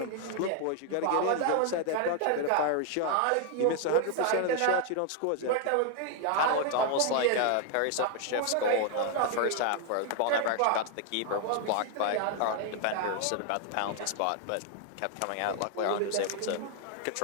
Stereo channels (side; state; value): both; different; correlation 0.00